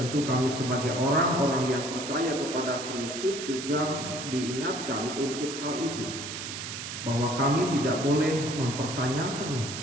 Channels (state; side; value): noise; right; hiss, 7 dB below the sound